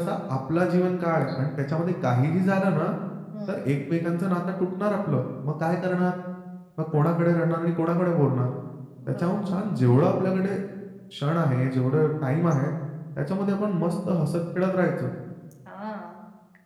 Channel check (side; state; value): both; identical; correlation 1.00